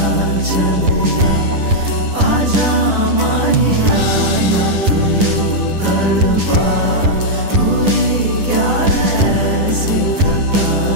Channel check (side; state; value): left; late; 10 ms